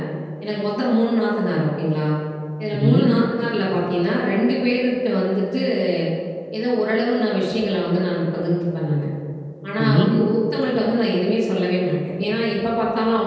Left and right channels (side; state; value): both; identical; correlation 1.00